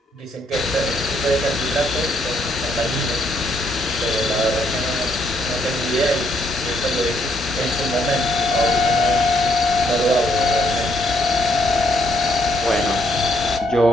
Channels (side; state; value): both; normal; correlation 0.71